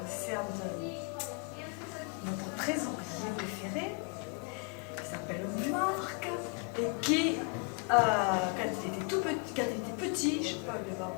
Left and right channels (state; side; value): quieter; right; 33.9 dB